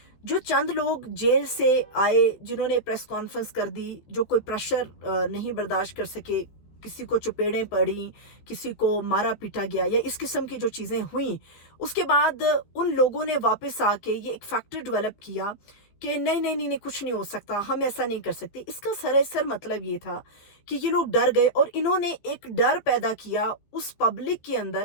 जो चंद लोग जेल से आए, जिन्होंने प्रेस कॉन्फ्रेंस कर दी, जो कोई प्रेशर नहीं बर्दाश्त कर सके, किसी को चपेड़ें पड़ी, किसी को मारा पीटा गया, या इस किस्म की जो चीज़ें हुई, उसके बाद उन लोगों ने वापस आके ये एक फैक्टर डेवलप किया कि नहीं नहीं नहीं नहीं, कुछ नहीं हो सकता, हम ऐसा नहीं कर सकते। इसका सरासर मतलब ये था कि ये लोग डर गए और इन्होंने एक डर पैदा किया उस पब्लिक के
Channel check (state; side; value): late; right; 14 ms